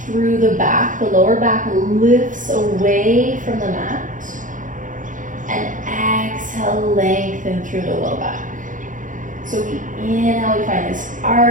through the back. The lower back lifts away from the mat. And exhale, lengthen through the low back. So we inhale, we find this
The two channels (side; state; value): left; late; 0.38 ms